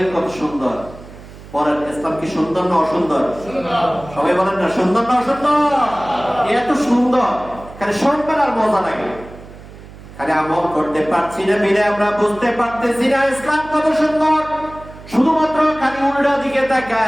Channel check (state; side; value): noise; right; hum, 18 dB below the sound